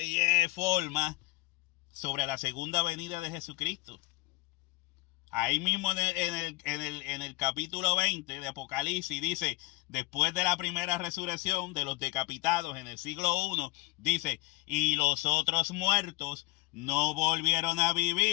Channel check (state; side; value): quieter; right; 22.2 dB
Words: forma, sobre la segunda venida de Jesucristo. Ahí mismo en el capítulo 20 de Apocalipsis dice, después de la primera resurrección de los decapitados en el siglo I, dice, y los otros muertos no volvieron a